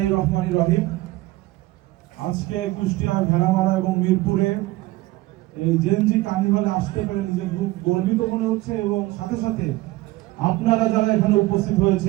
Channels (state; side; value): quieter; left; 18.9 dB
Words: রহমানির রহিম। আজকে কুষ্টিয়া, ভেড়ামারা এবং মিরপুরে এই জেনজি কার্নিভালে আসতে পেরে নিজের খুব গর্বিত মনে হচ্ছে, এবং সাথে সাথে আপনারা যারা এখানে উপস্থিত